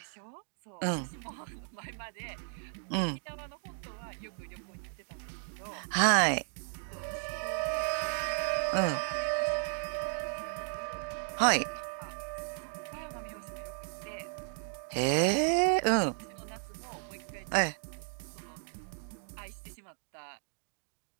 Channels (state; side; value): silent; left; 55 dB below the other